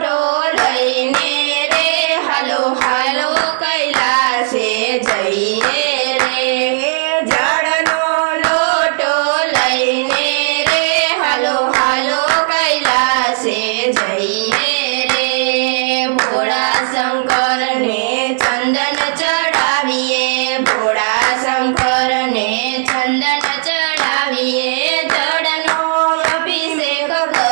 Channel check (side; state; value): left; silent; digital silence